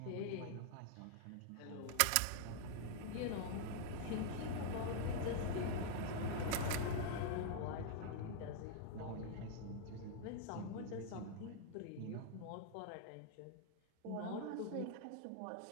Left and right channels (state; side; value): different; both; correlation -0.01